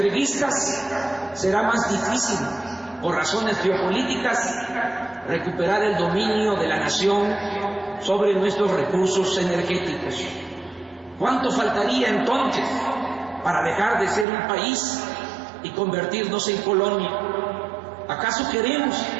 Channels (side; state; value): left; drops out; at 14.2 s